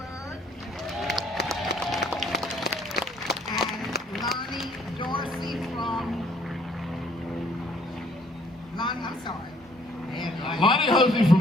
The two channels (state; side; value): normal; both; correlation 0.62